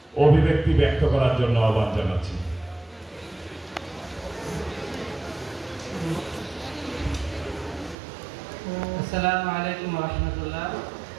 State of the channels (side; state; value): left; drops out; at 8.0 s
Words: অভিব্যক্তি ব্যক্ত করার জন্য আহ্বান জানাচ্ছি। আসসালামু আলাইকুম ওয়া রাহমাতুল্লাহ।